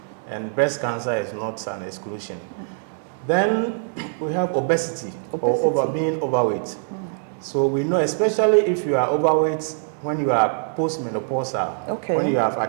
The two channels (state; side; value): silent; left; digital silence